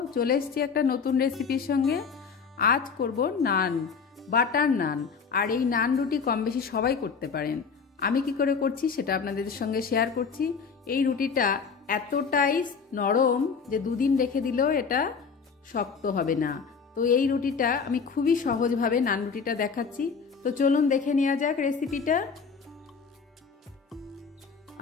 চলে এসেছি একটা নতুন রেসিপির সঙ্গে। আজ করব নান, বাটার নান। আর এই নান রুটি কম বেশি সবাই করতে পারেন। আমি কি করে করছি সেটা আপনাদের সঙ্গে শেয়ার করছি। এই রুটিটা এতটাই নরম যে দুদিন রেখে দিলেও এটা শক্ত হবে না। তো এই রুটিটা আমি খুবই সহজভাবে নান রুটিটা দেখাচ্ছি। তো চলুন দেখে নেওয়া যাক রেসিপিটা।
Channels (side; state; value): right; quieter; 5.6 dB